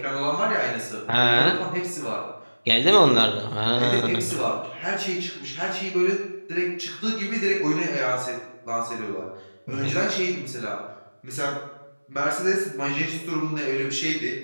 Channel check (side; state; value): both; inverted; correlation -1.00